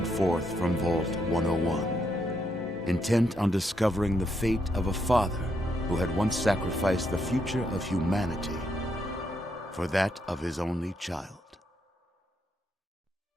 forth from Vault 101, intent on discovering the fate of a father who had once sacrificed the future of humanity for that of his only child.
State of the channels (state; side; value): normal; both; correlation 0.78